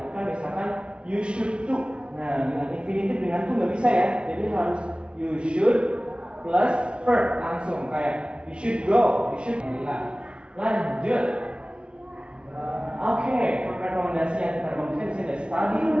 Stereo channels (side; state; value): left; late; 0.057 ms